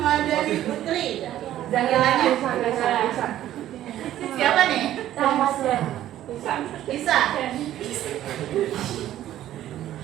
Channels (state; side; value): quieter; left; 12.8 dB